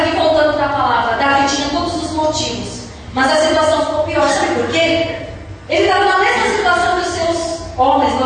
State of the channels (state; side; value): identical; both; correlation 1.00